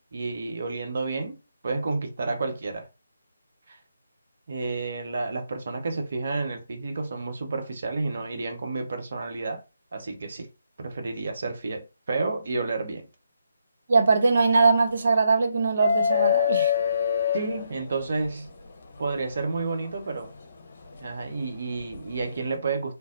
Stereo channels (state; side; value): inverted; both; correlation -0.79